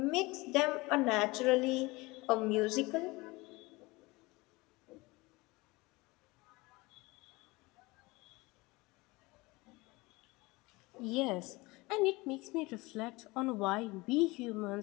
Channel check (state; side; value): quieter; right; 22.9 dB